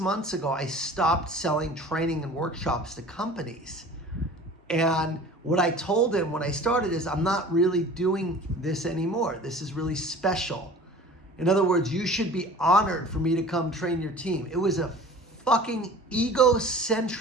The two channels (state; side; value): normal; both; correlation 0.43